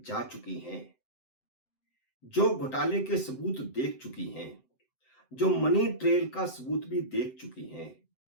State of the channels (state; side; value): late; right; 7.8 ms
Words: चुकी हैं, जो घोटाले के सबूत देख चुकी हैं, जो मनी ट्रेल का सबूत भी देख चुकी हैं।